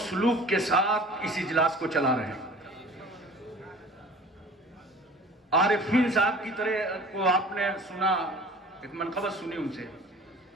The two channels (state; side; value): normal; both; correlation 0.44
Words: سلوک کے ساتھ اس اجلاس کو چلا رہے ہیں. عارفین صاحب کی طرح کو آپ نے سنا، ایک منقبت سنی ان سے،